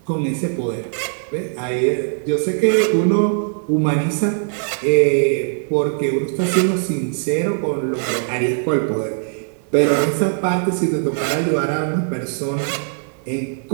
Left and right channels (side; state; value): left; silent; 66 dB below the other